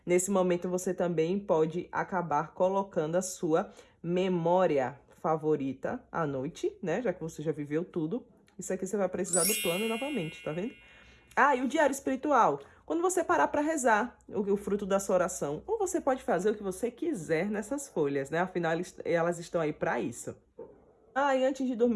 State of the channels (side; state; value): both; identical; correlation 1.00